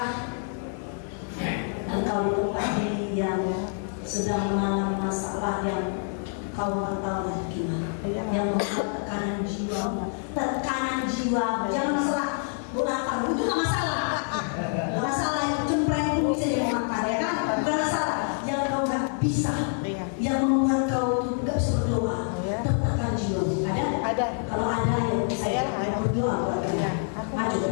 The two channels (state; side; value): silent; right; 55 dB below the other